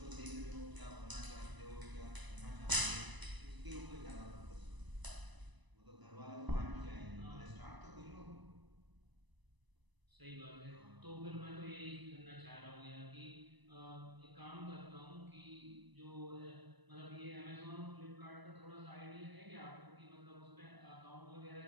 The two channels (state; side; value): late; left; 1.0 ms